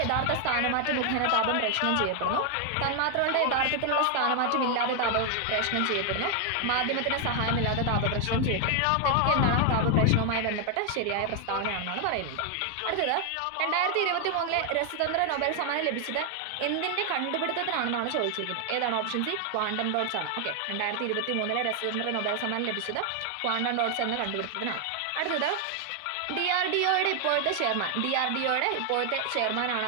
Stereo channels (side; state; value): both; different; correlation 0.00